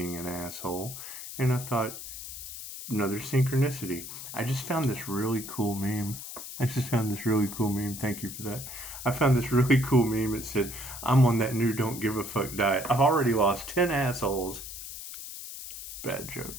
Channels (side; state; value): left; noise; hiss, 10 dB below the sound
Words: an asshole. And I thought, another synchronicity. I just found this really cool meme. Thank you for that. I found this really cool meme. It said, I'm on that new don't give a fuck diet. I've already lost 10 assholes. Bad